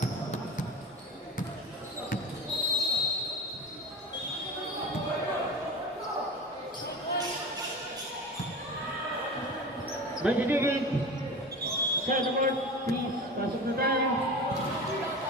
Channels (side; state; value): both; normal; correlation 0.32